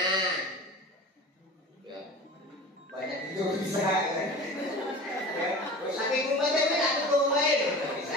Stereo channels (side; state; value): both; normal; correlation 0.36